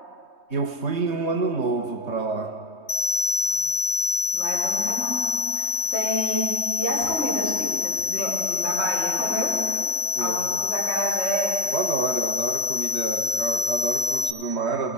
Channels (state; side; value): late; right; 3.2 ms